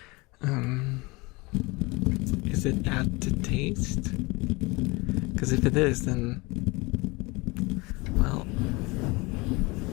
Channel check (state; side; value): quieter; right; 25.0 dB